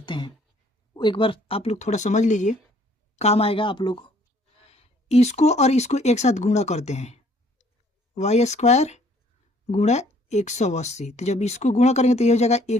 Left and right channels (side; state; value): both; normal; correlation 0.61